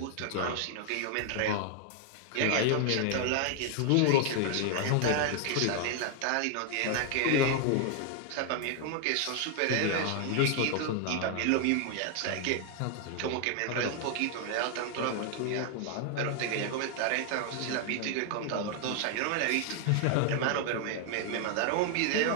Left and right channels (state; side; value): different; both; correlation 0.00